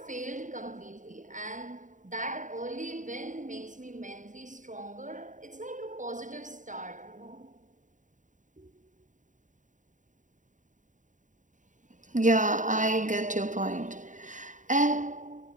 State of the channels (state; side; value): late; left; 0.37 ms